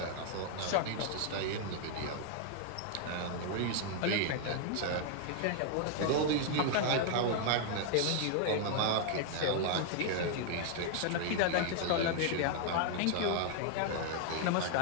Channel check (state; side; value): different; both; correlation 0.00